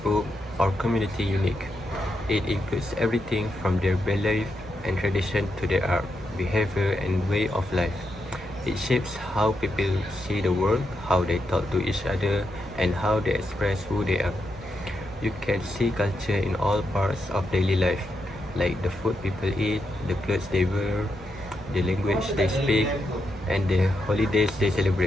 or community unique. It includes everything from their belief and tradition to their art, behavior, and way of life. It shapes how people see the world, how they talk to each other, and how they express who they are. You can see culture in all parts of daily life, like the food people eat, the clothes they wear, the language they speak, and the holidays they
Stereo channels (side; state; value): both; normal; correlation 0.84